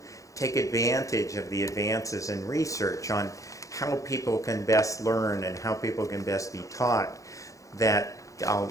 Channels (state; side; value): late; right; 0.16 ms